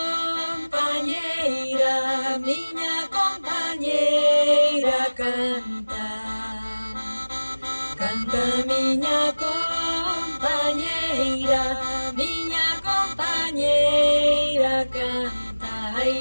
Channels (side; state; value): both; inverted; correlation -1.00